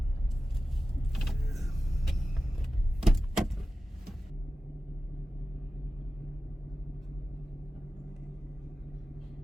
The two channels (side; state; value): both; normal; correlation 0.94